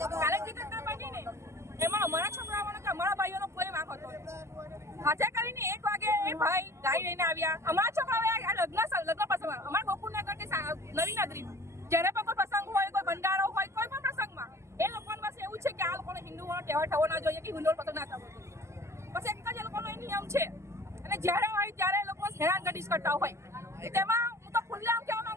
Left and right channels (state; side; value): late; left; 0.13 ms